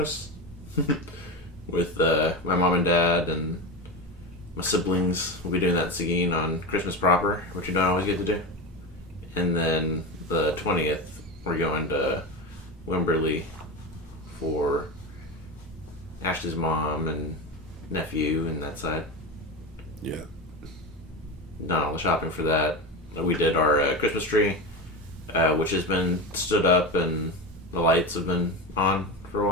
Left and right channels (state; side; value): normal; both; correlation 0.20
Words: with my mom and dad and my siblings. We'll be doing that in Seguin on Christmas proper, which you don't always get to do. And then the 20th, we're going to Wimberley for Ashley's mom and nephew and that side. Yeah. Done all the shopping for that. We did our Christmas tree, which has been stood up and the lights have been on for a